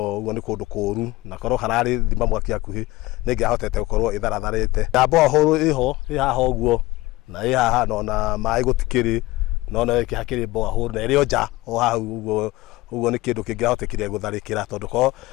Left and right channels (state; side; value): quieter; right; 19.4 dB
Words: ni kundu kuru na korwo harari thima mwaki akuhi ningihotete gukorwo itharatharite ndambo huru iho ihaha uguo na ihaha na mai gutikiri no ikihakiri mboa huru na irio nja o hau uguo ni kindu kingihotekire gutharikira tondu ko